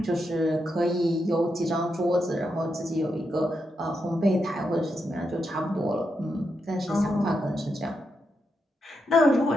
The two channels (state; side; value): normal; both; correlation 0.84